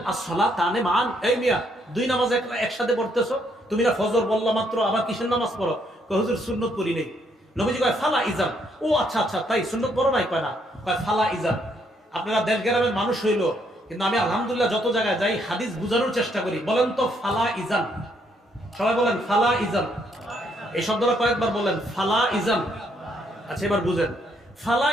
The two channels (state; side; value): normal; both; correlation 0.72